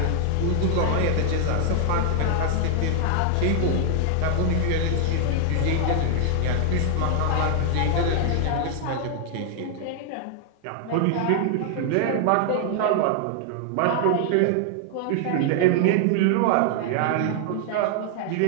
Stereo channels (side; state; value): both; different; correlation 0.00